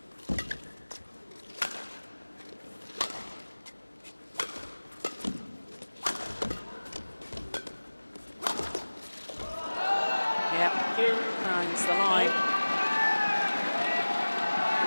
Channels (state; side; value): inverted; both; correlation -1.00